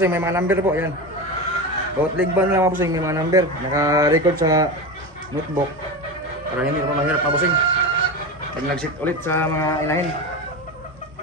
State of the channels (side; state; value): both; normal; correlation 0.22